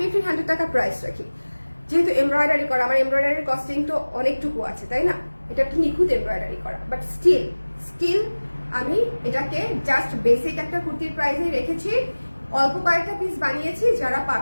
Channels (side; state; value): both; inverted; correlation -1.00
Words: টাকা প্রাইস রাখি, যেহেতু এমব্রয়ডারি করা, আমার এমব্রয়ডারির কস্টিং তো অনেকটুকু আছে, তাই না? এটা একটু নিখুঁত এমব্রয়ডারি করা, বাট স্টিল আমি এটাকে জাস্ট বেসিক একটা কুর্তির প্রাইসে রেখেছি। অল্প কয়েকটা পিস বানিয়েছি, যারা